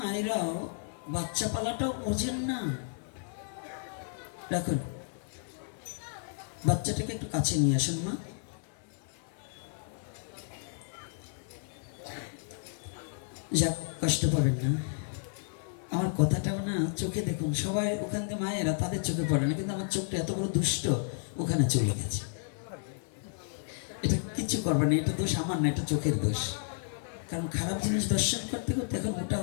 বাচ্চা পালাটাও বোঝেন না। রাখুন, বাচ্চাটাকে একটু কাছে নিয়ে আসুন মা। যাক, কষ্ট পাবেন না। আমার কথাটাও না চোখে দেখুন, সবাই ওখান থেকে মায়েরা তাদের চোখে পড়ে না, কিন্তু আমার চোখটা এত বড় দুষ্ট ওখানে চলে গেছে। এটা কিছু করবে না, এটা দোষ আমার না, এটা চোখের দোষ। কারণ খারাপ জিনিস দর্শন করতে করতে এখন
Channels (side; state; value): right; silent; 56 dB below the other